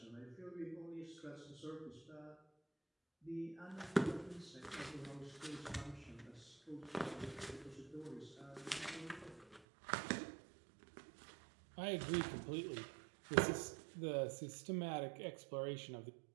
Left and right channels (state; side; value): drops out; left; at 9.6 s